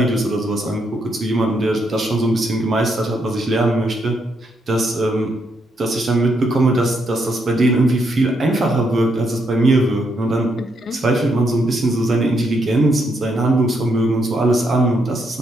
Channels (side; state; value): both; normal; correlation 0.77